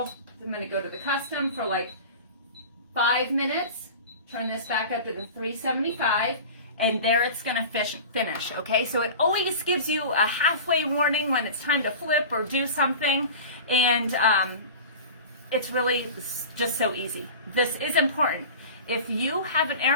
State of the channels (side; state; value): both; inverted; correlation -0.35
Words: I'm gonna go to the custom for like 5 minutes. Turn this back up to the 375, and there it's gonna finish, okay? So it always gives you a halfway warning when it's time to flip or do something, and it's really just so easy. This is important. If you have an air